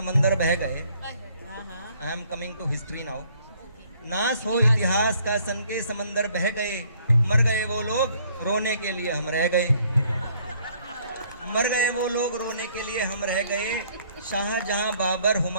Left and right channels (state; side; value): inverted; both; correlation -0.63